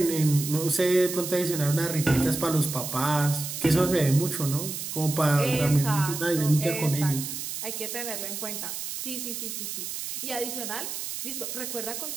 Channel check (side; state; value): right; noise; hiss, 6 dB below the sound